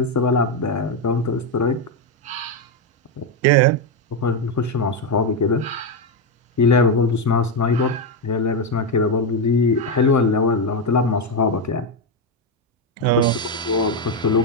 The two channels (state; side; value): normal; both; correlation 0.07